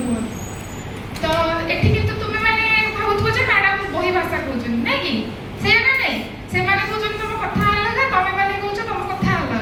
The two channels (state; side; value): identical; both; correlation 1.00